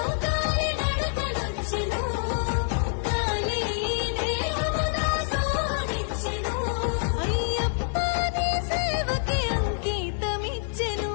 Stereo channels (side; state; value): right; silent; 61 dB below the other